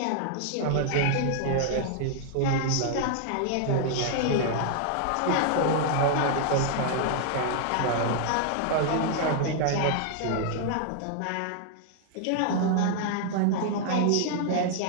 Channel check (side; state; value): both; different; correlation 0.00